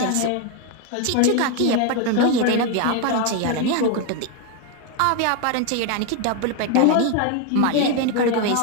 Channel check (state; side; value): different; both; correlation 0.01